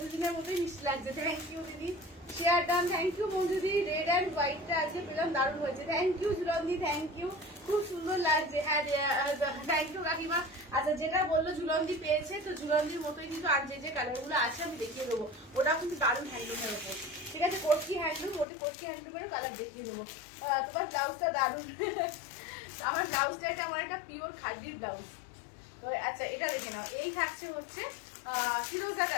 মতোই মিষ্টি লাগছে। থ্যাংক ইউ দিদি, শেয়ার ডান। থ্যাংক ইউ বন্ধুদি, রেড অ্যান্ড হোয়াইটটা আজকে পেলাম, দারুণ হয়েছে। থ্যাংক ইউ ঝুলন্দি, থ্যাংক ইউ, খুব সুন্দর লাগছে। হ্যাঁ থ্যাংক ইউ কাকিমা। আচ্ছা যেটা বললো ঝুলন্দি পেয়েছে, তো ঝুলন্দির মতোই কিন্তু আর যে কালারগুলো আছে আমি দেখিয়ে দেবো। ওটা কিন্তু দারুণ হ্যান্ডলুমের ওপর। ঠিক আছে, কটকি হ্যান্ডলুম, ওটা কটকি হ্যান্ডলুমের কালার দেখিয়ে দেবো। তোমার ব্লাউজটা দারুণ। আমার ব্লাউজটা এটা আমার একটা পিওর খাদির ব্লাউজ। তো আচ্ছা এটা দেখে নাও, এই থাকছে হচ্ছে ফিরোজা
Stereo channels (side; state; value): right; drops out; at 18.4 s